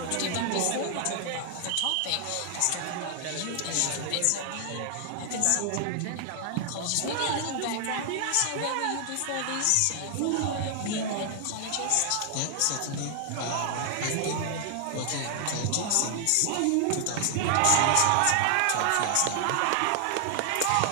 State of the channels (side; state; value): both; different; correlation 0.00